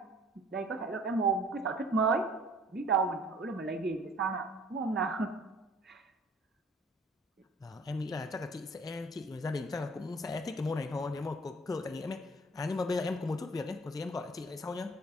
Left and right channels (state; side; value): normal; both; correlation 0.53